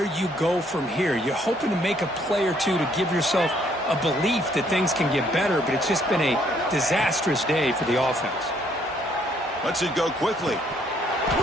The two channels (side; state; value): both; normal; correlation 0.67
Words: you go from here. You're hoping to make a play or two to give yourself a belief that things can get better, but it's just been a disastrous day for the offense. Lets it go quickly.